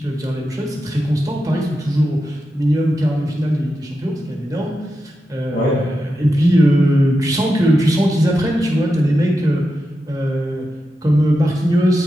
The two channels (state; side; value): normal; both; correlation 0.89